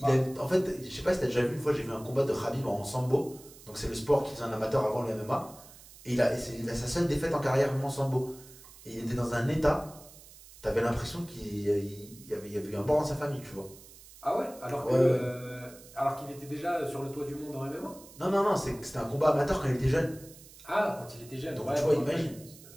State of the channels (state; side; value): noise; right; hiss, 20 dB below the sound